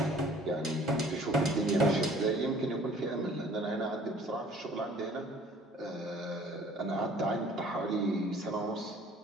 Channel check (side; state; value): both; normal; correlation 0.53